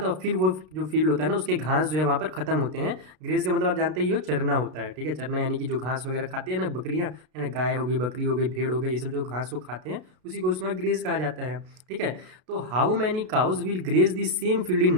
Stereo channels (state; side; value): late; left; 33 ms